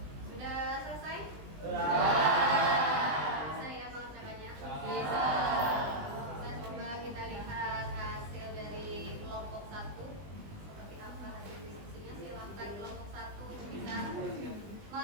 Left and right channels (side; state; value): left; late; 20 ms